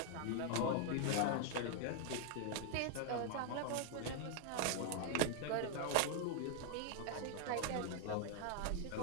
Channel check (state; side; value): different; both; correlation 0.00